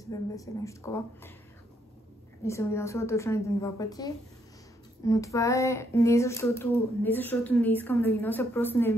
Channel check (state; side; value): normal; both; correlation 0.74